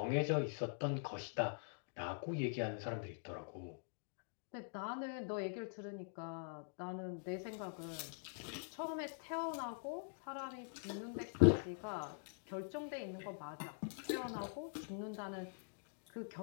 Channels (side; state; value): right; silent; digital silence